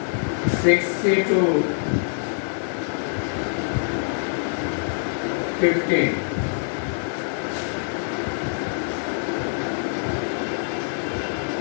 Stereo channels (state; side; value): silent; right; 60 dB below the other